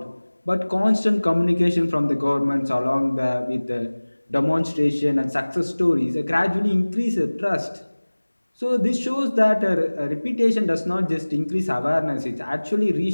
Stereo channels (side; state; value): both; inverted; correlation -1.00